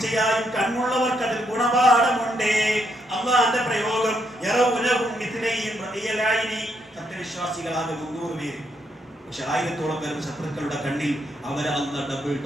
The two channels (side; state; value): both; normal; correlation 0.76